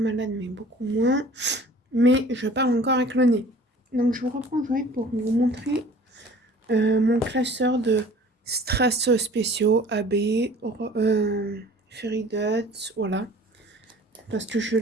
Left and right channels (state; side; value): normal; both; correlation 0.48